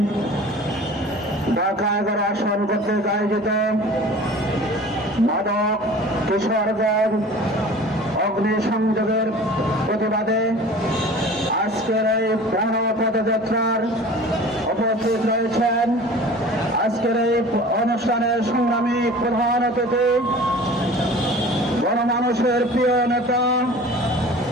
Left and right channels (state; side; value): normal; both; correlation 0.42